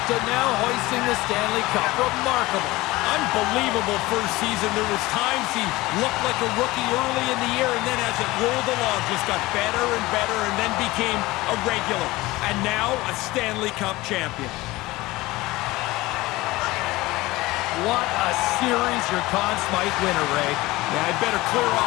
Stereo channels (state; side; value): quieter; right; 19.8 dB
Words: to now hoisting the Stanley Cup. Remarkable. Unbelievable first season. There was times he looked like a rookie early in the year, and then as it rolled along, just got better and better, and then became a regular. And now a Stanley Cup champion. What a series your Conn Smythe winner, Ray. Yeah, I'd better clear